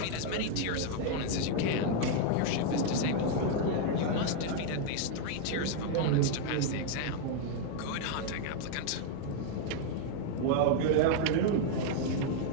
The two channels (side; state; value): both; different; correlation 0.00